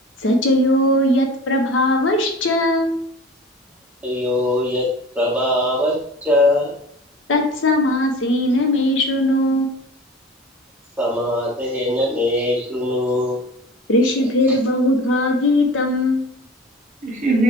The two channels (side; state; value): both; normal; correlation 0.39